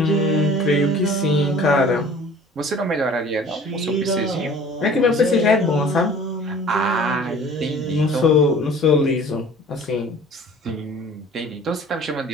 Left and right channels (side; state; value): both; normal; correlation 0.47